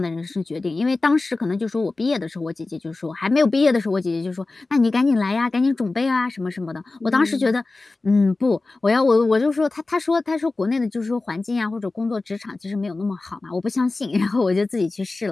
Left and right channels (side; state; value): right; quieter; 3.4 dB